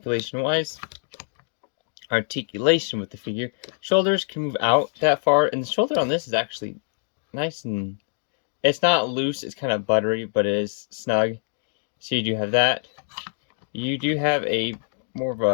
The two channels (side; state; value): right; silent; digital silence